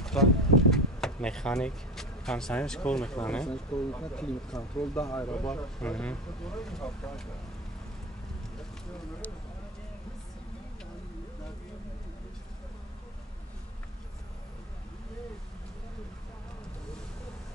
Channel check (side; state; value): both; normal; correlation 0.27